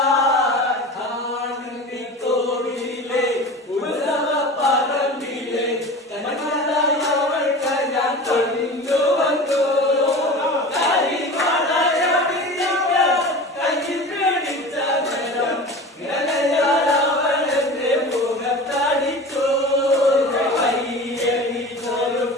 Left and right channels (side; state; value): both; normal; correlation 0.34